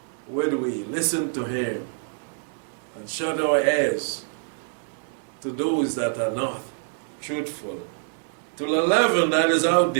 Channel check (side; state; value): left; silent; 61 dB below the other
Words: Would we listen to Him and shut our ears to those that are not truthful, to the leaven that is out